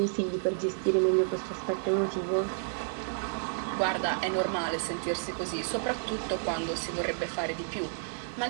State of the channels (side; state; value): left; silent; digital silence